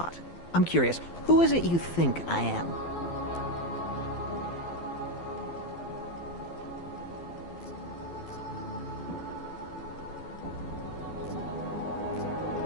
I'm curious, who is it you think I am?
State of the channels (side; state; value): right; late; 12 ms